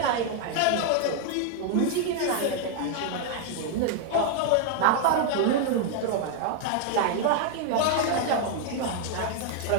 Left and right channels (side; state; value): both; different; correlation 0.00